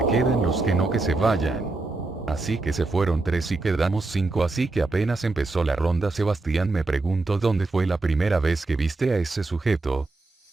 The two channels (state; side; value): quieter; left; 3.3 dB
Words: queden, los que no que se vayan. Así que se fueron 3 y quedamos 5, así que apenas empezó la ronda Sebastián me preguntó dónde fue la primera vez que viste a ese sujeto.